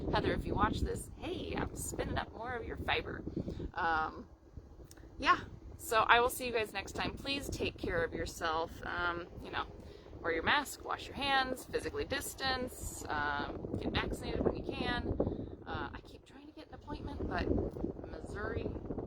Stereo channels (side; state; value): both; identical; correlation 1.00